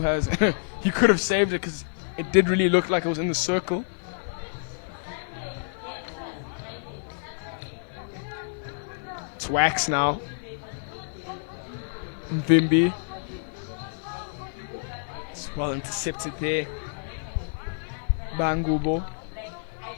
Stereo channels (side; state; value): right; silent; digital silence